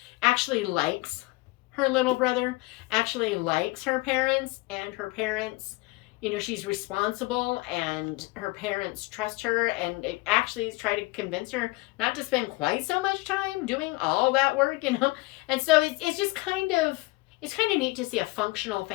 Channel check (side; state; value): right; quieter; 23.2 dB